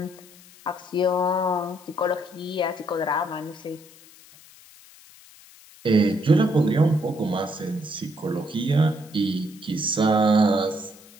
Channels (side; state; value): left; noise; hiss, 23 dB below the sound